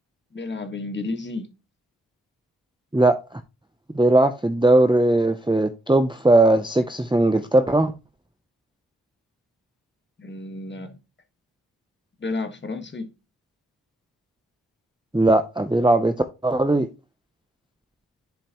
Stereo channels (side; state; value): both; normal; correlation 0.79